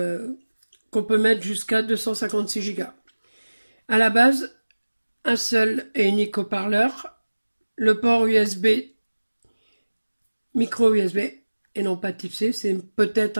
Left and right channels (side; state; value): both; inverted; correlation -1.00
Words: qu'on peut mettre jusqu'à 256 Go. À la base, un seul et unique haut-parleur, le port USB, micro USB et non pas type C, c'est peut-être